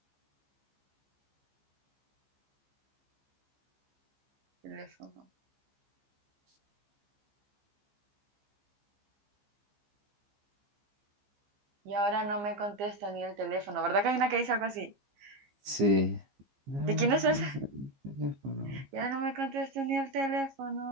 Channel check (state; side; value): late; left; 15 ms